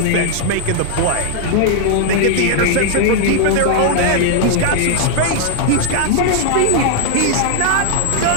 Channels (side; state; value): both; different; correlation 0.00